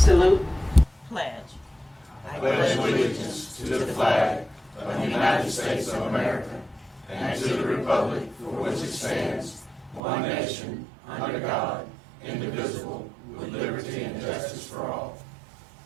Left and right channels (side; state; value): left; drops out; at 10.0 s